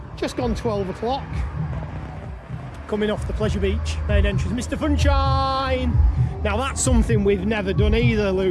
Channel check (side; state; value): both; identical; correlation 1.00